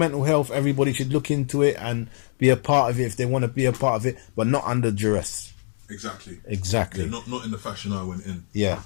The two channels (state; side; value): silent; right; digital silence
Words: health, everybody should look into it and be a part of it if they want to be a part of it, but not under duress. Exactly. Yeah, not in the fashion I went in.